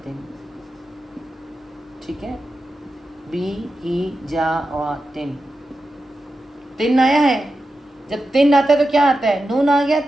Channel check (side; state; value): both; normal; correlation 0.91